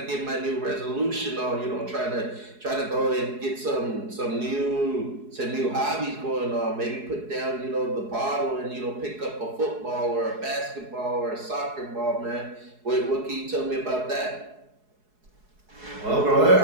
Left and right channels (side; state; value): left; late; 4.7 ms